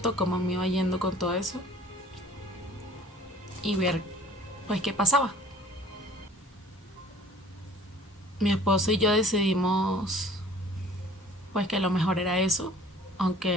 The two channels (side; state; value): both; normal; correlation 0.50